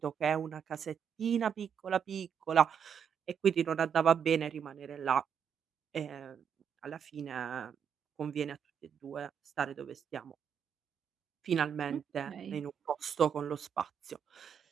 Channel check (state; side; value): quieter; left; 7.7 dB